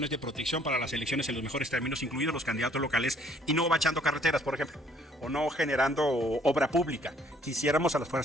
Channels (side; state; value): both; normal; correlation 0.62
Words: de protección para las elecciones en los mejores términos, incluidos los candidatos locales, y no bachando carreteras, por ejemplo, o no generando obra pública. Quisiéramos a las